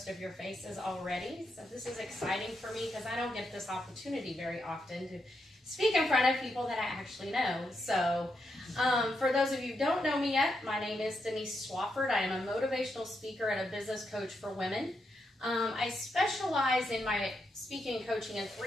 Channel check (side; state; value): both; normal; correlation 0.82